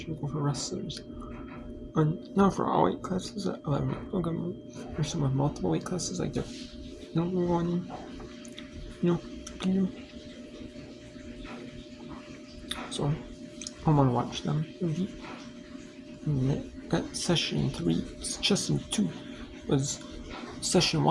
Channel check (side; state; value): both; identical; correlation 1.00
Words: of people for wrestlers. Now for all weight classes, there's some with multiple weight classes, like they're going, so I want to watch them. Got session 3, session 2 was, session